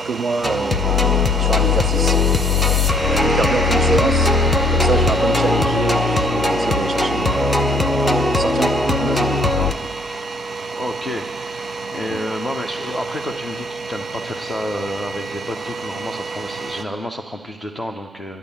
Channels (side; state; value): both; normal; correlation 0.63